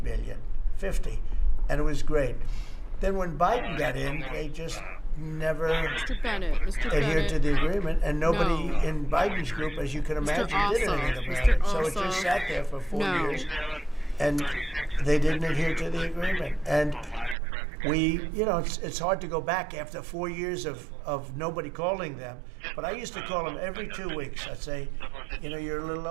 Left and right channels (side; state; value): left; drops out; at 17.4 s